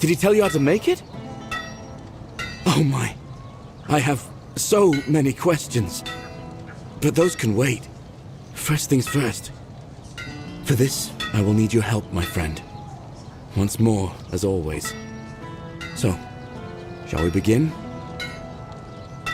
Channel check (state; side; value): identical; both; correlation 1.00